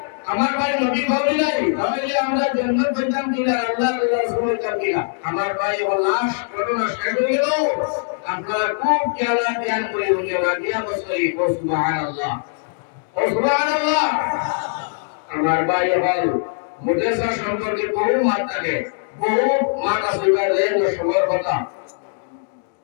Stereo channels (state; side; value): silent; right; digital silence